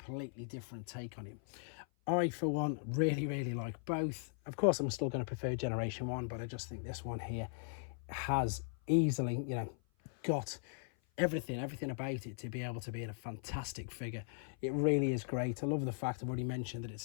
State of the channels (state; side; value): silent; right; 52 dB below the other